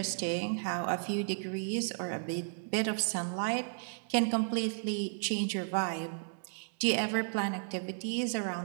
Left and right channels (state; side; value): silent; left; digital silence